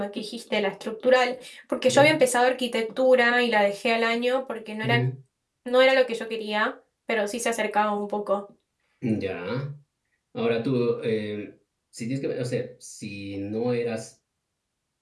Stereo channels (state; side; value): identical; both; correlation 1.00